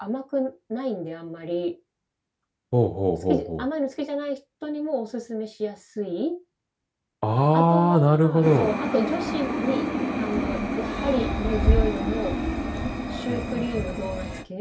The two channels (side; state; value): both; identical; correlation 1.00